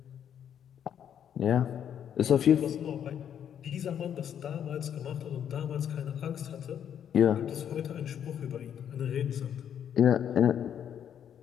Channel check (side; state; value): right; quieter; 9.1 dB